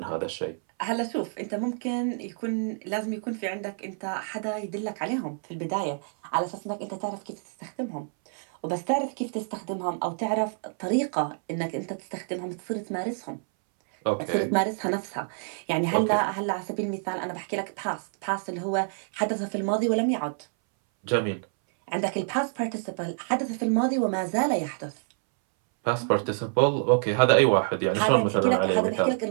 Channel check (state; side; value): silent; left; 60 dB below the other